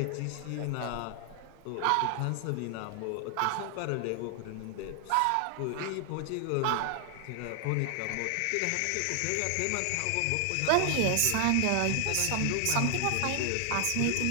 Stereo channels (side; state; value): both; different; correlation 0.00